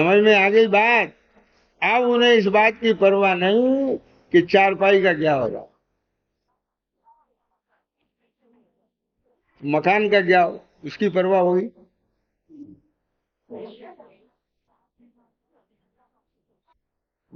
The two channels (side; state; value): both; identical; correlation 1.00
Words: में आ गई बात? अब उन्हें इस बात की परवाह नहीं कि चारपाई का क्या होगा, मकान का क्या हो, उसकी परवाह होगी?